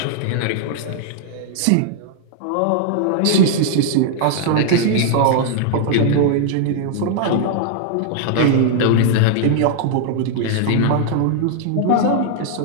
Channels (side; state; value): both; different; correlation -0.01